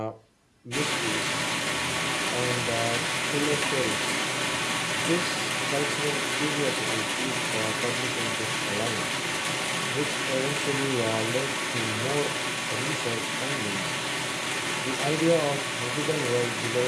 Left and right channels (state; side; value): identical; both; correlation 1.00